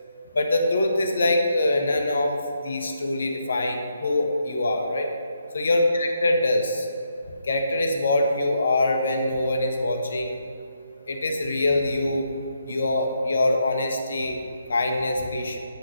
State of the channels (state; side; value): inverted; both; correlation -0.80